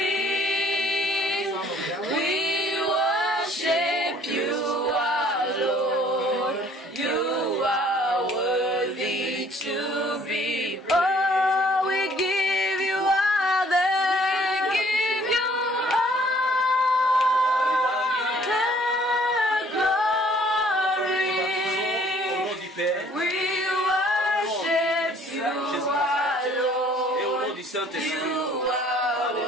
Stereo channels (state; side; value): normal; both; correlation 0.58